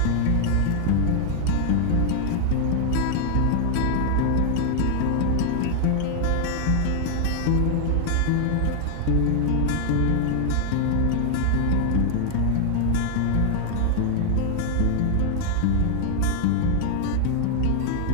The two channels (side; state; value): both; different; correlation 0.00